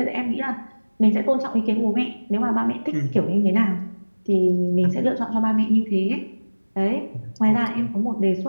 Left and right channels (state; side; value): inverted; both; correlation -1.00